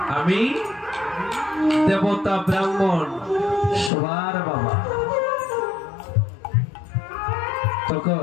আমি দেবতা ব্রাহ্মণ সবার বাবা।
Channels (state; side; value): drops out; right; at 3.9 s